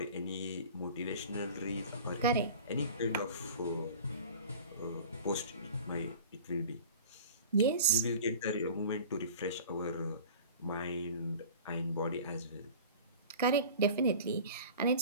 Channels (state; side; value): inverted; both; correlation -0.40